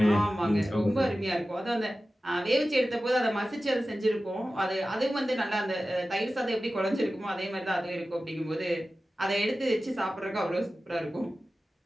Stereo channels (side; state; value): both; normal; correlation 0.95